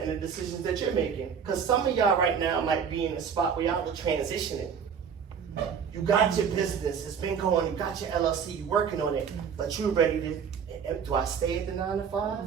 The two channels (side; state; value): left; quieter; 7.0 dB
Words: and the decisions that you're making. Because some of y'all right now might be in a spot where y'all are transitioning. You got your business, it's been going, you got your LLC, you're working on it, but you're ready to, do I stay at the 9 to 5